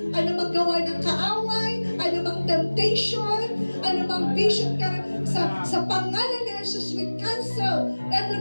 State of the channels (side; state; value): both; inverted; correlation -1.00